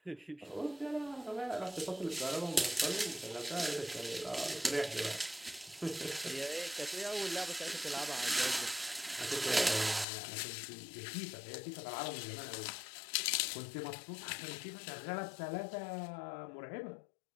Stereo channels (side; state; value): right; drops out; at 10.1 s